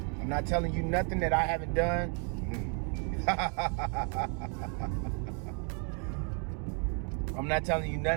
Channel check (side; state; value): left; quieter; 39.8 dB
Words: I'm not telling you nothing that I haven't done. I'm not telling you